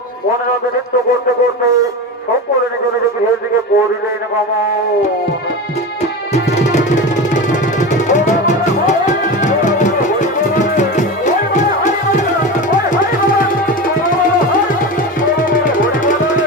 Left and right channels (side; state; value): both; normal; correlation 0.25